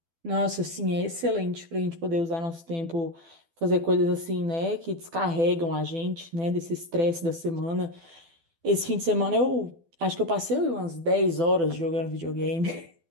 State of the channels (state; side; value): late; left; 12 ms